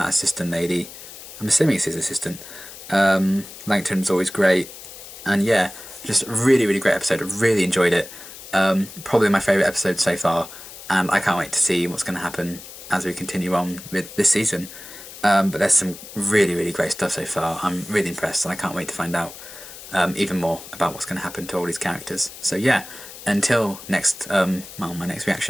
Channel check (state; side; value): noise; left; hiss, 15 dB below the sound